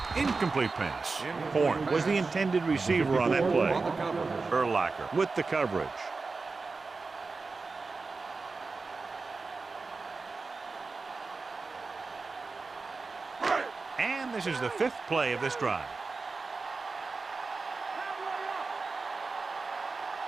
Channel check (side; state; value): left; quieter; 4.1 dB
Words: Incomplete pass. Horn was the intended receiver on that play. Urlacher with the coverage. And this is the 5th play of this drive.